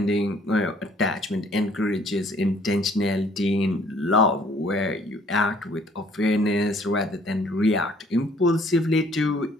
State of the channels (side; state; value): both; normal; correlation 0.60